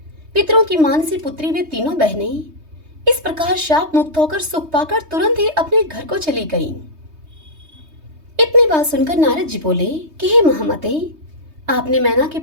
पितरों की मानसी पुत्री वे तीनों बहनें इस प्रकार शाप मुक्त होकर सुख पाकर तुरंत ही अपने घर को चली गईं। इतनी बात सुनकर नारद जी बोले कि हे महामते, आपने मैना के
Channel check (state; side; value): late; left; 3.2 ms